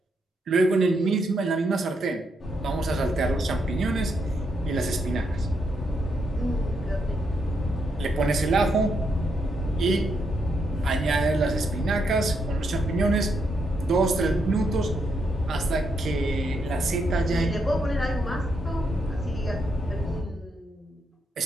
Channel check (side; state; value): both; normal; correlation 0.79